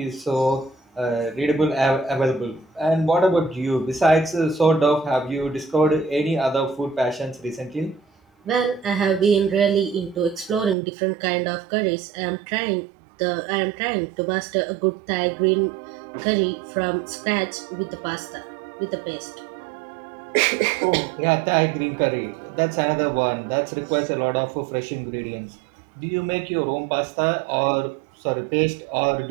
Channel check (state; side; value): drops out; left; at 10.8 s